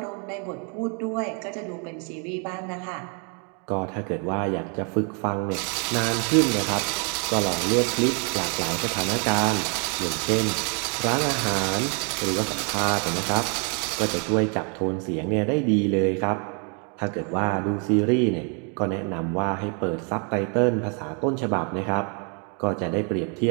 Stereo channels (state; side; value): quieter; left; 37.4 dB